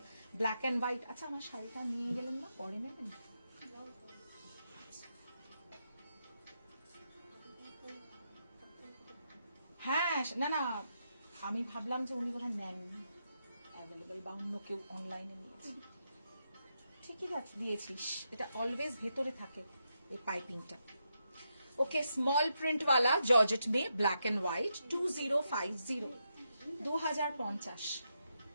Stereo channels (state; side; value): inverted; both; correlation -0.83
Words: black and white. अच्छा আমার শাড়িটা নিয়ে গেলেন না, পরে নেবেন। হ্যাঁ না আমি ভাবলাম যে উনি বোধহয় নেন অ্যাভেলেবল, বা অন্য কেউ অনলাইনে নিয়েছে। ঠিকই দিয়েছিস, এটা অলওয়েজ ভেতরে থাকে এই পাইপিংটা। ओके, स्मॉल प्रिंट वाला जॉर्जेट में black and white 2050